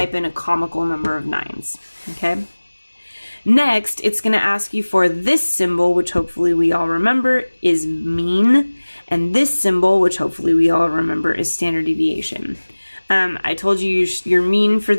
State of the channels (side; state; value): both; inverted; correlation -1.00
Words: in a comical number of 9s. Okay. Next, it's going to ask you for this symbol, which hopefully we all remember is mean. And this symbol, which hopefully we all remember, is standard deviation. I told you your mean for